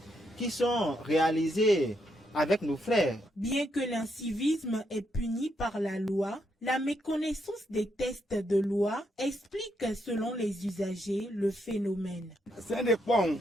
qui sont réalisées avec nos frères. Bien que l'incivisme est puni par la loi, la méconnaissance des textes de loi explique selon les usagers le phénomène.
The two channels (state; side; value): normal; both; correlation 0.78